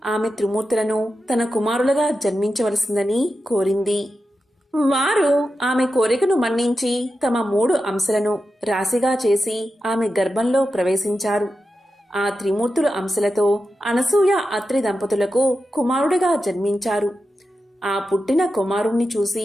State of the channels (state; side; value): normal; both; correlation 0.90